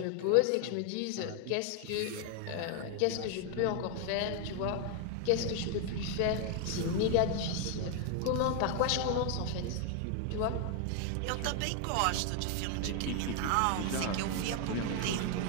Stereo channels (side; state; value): both; different; correlation 0.00